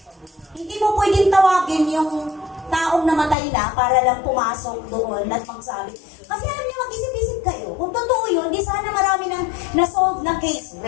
hindi mo pwedeng tawagin yung taong namatay na para lang pumasok doon at magsabi. Kasi alam niyo, mag-isip-isip kayo. Kung totoo yun, di sana marami nang na-solve na case.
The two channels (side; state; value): right; drops out; at 3.4 s